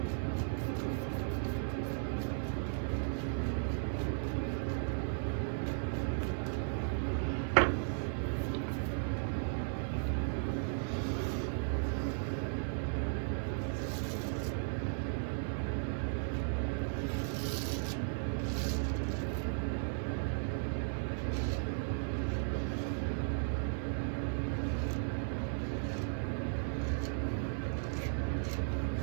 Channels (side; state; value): left; silent; digital silence